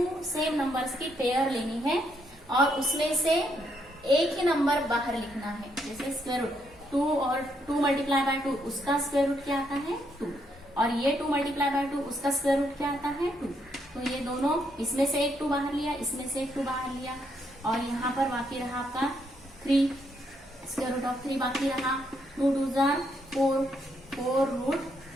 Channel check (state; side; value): normal; both; correlation 0.75